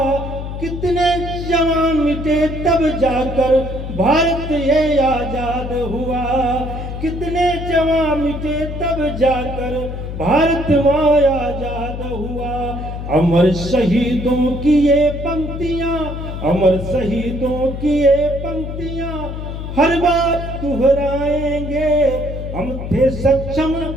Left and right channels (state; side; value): noise; left; hum, 7 dB below the sound